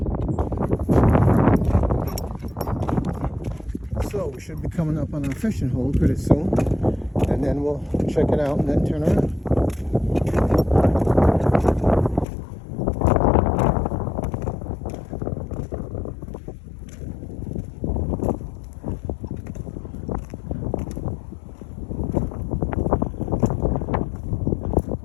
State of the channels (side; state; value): right; drops out; at 12.2 s